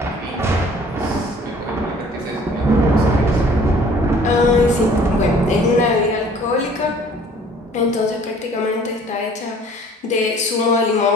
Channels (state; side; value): normal; both; correlation 0.53